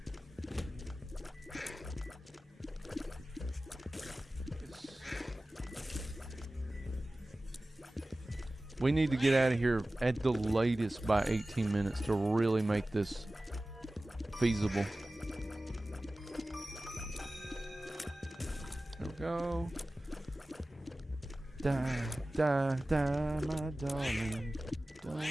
We need to get out of here at the latest by 18 minutes to really make this feasible. There we go. Die, die, die, my darling. Don't let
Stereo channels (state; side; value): normal; both; correlation 0.97